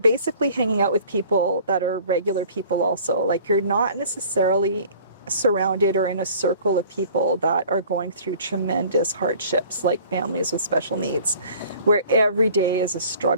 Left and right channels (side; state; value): both; inverted; correlation -0.49